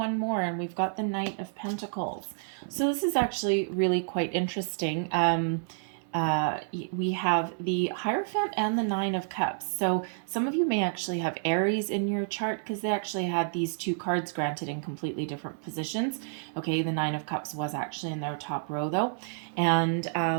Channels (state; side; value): silent; left; 58 dB below the other